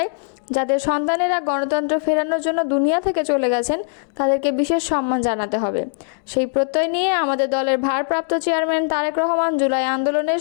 যাদের সন্তানেরা গণতন্ত্র ফেরানোর জন্য দুনিয়া থেকে চলে গেছেন, তাদেরকে বিশেষ সম্মান জানাতে হবে। সেই প্রত্যয় নিয়ে আমাদের দলের ভারপ্রাপ্ত চেয়ারম্যান তারেক রহমান জুলাই আন্দোলনে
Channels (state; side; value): silent; right; digital silence